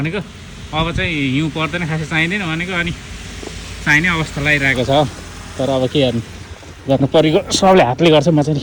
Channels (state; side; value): identical; both; correlation 1.00